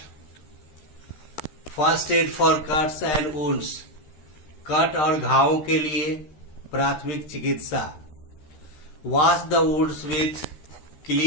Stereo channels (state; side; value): late; right; 13 ms